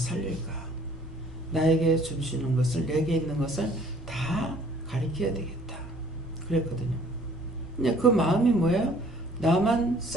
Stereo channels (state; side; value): normal; both; correlation 0.56